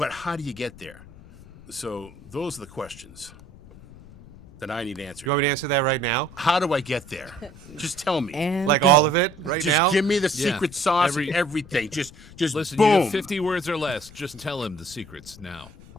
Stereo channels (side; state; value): left; noise; rumble, 20 dB below the sound